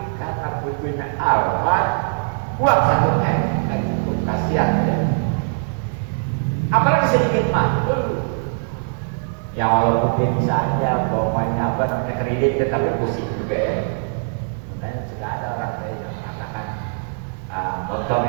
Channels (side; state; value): left; silent; digital silence